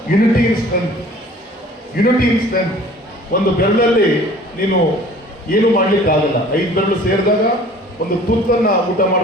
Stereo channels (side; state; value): both; normal; correlation 0.49